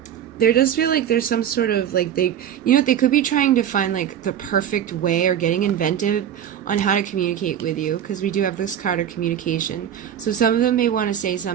there does feel like there's some sort of, they could be trying to find, the perfect way or getting inventive on how to communicate with you, because we do have this card of communication. So some of them may want to say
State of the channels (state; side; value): quieter; left; 9.8 dB